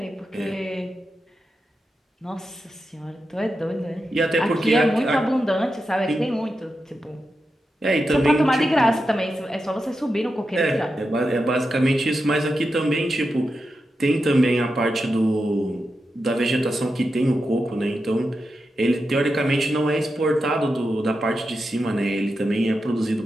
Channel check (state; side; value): normal; both; correlation 0.89